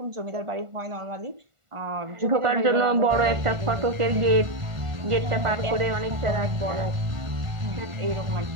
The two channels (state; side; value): late; left; 1.5 ms